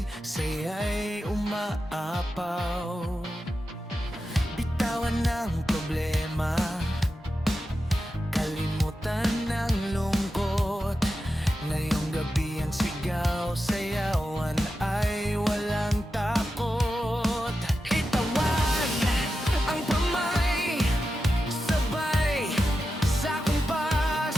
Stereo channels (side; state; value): both; normal; correlation 0.90